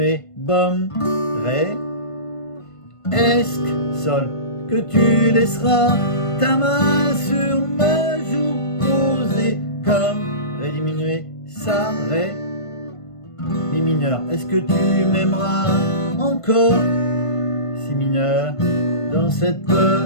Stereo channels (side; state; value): right; late; 1.5 ms